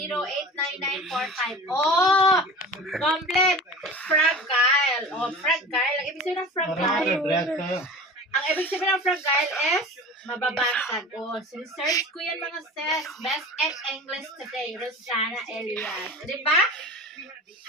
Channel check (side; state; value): both; normal; correlation 0.36